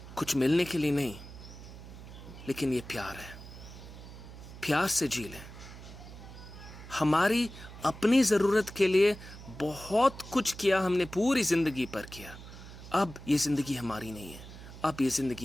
कुछ मिलने के लिए नहीं, लेकिन ये प्यार है। प्यार से जी लें। हमारी अपनी ज़रूरत के लिए बहुत कुछ किया हमने, पूरी ज़िंदगी पर किया। अब ये ज़िंदगी हमारी नहीं है, अब ये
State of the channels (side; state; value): right; noise; hum, 15 dB below the sound